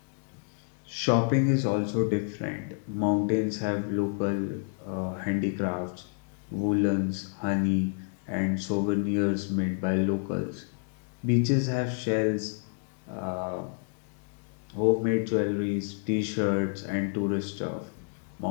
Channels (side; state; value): right; silent; 57 dB below the other